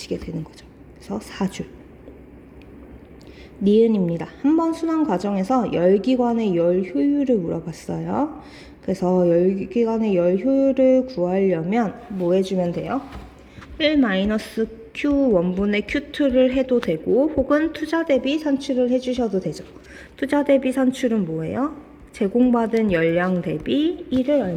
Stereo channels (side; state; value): both; identical; correlation 1.00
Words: 되는 거죠. 그래서 4줄. 니은입니다. 한 번 순환 과정에서 열기관의 열 효율을 물어봤어요. 그래서 열기관의 열 효율을 구하려면 뭐 해주면 돼요? 1-Q1분의 Q2를 해도 되고 혹은 투자 대비 산출을 해주셔도 되죠. 투자 대비 산출은 뭐예요? 제공받은 열량 대비 1을